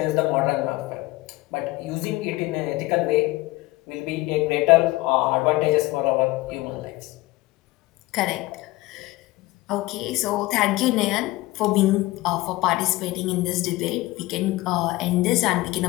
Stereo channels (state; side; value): quieter; right; 19.5 dB